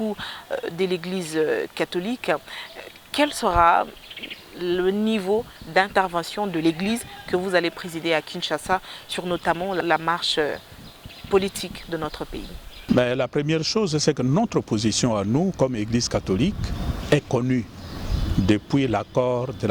de l'Église catholique. Quel sera le niveau d'intervention de l'Église que vous allez présider à Kinshasa sur notamment la marche politique de notre pays? Mais la première chose, c'est que notre position à nous, comme Église catholique, est connue depuis l'accord de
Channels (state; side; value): identical; both; correlation 1.00